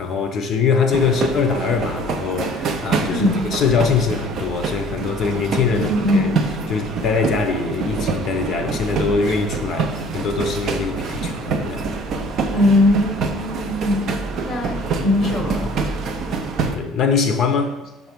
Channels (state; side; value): normal; both; correlation 0.51